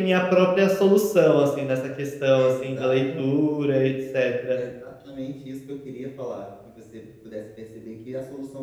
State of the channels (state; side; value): identical; both; correlation 1.00